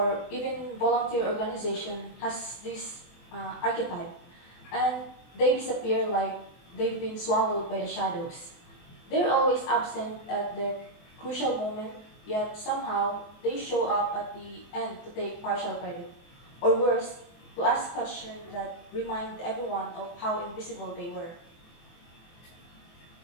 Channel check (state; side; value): late; right; 24 ms